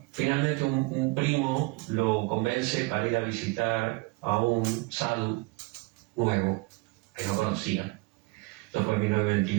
finalmente un primo lo convence para ir a visitar a un sadhu nuevo que no conocían. Esto fue en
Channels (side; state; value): left; quieter; 25.0 dB